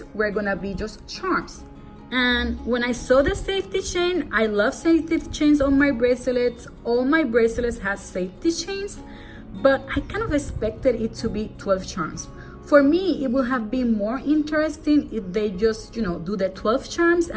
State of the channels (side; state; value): both; identical; correlation 1.00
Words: were gonna be just charms. And when I saw the safety chain, I love safety chains on my bracelets. All my bracelets have safety chains, but I kind of expected it to be 12 charms. For me, it would have been more interesting if they just, do the 12 charms